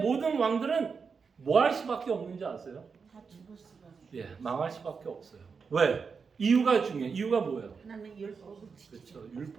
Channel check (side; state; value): left; quieter; 5.5 dB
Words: 왕들은 뭐 할 수밖에 없는지 아세요? 다 죽을 수가 없어. 예, 망할 수밖에 없어요. 왜? 이유가 중요해요. 이유가 뭐예요? 하나님의 율법을 지키지 그렇죠.